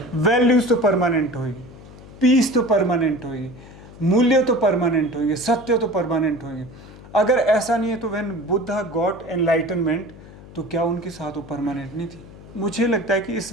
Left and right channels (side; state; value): left; noise; hum, 18 dB below the sound